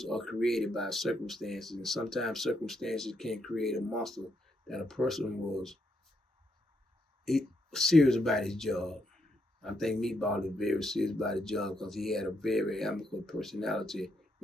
are created by circumstances, and sometimes circumstances can create a monster that a person was serious about his job. I think Meatball is very serious about his job because he had a very amicable personality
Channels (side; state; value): both; normal; correlation 0.78